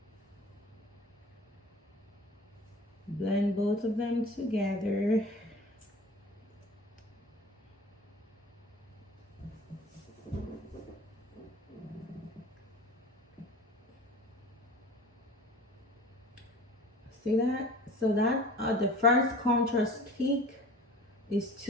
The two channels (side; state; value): both; normal; correlation 0.42